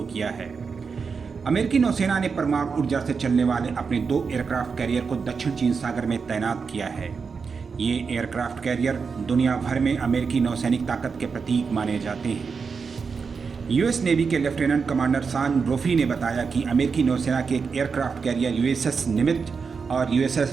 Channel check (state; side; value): quieter; left; 5.4 dB